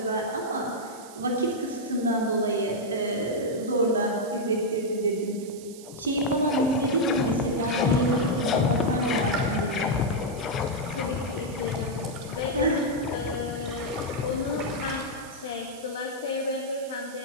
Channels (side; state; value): right; noise; hiss, 18 dB below the sound